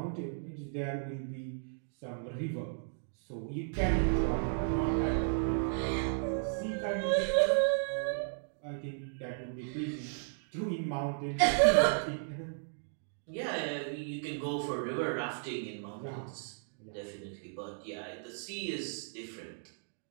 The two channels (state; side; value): silent; left; digital silence